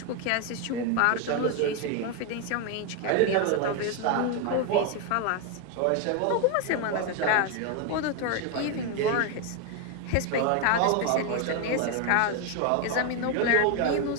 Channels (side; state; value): both; different; correlation 0.01